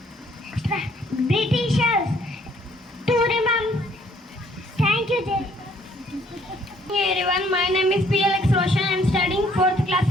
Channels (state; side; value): normal; both; correlation 0.63